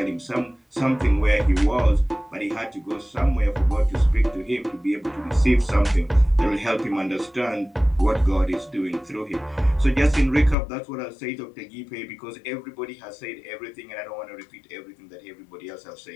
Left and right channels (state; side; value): drops out; right; at 10.6 s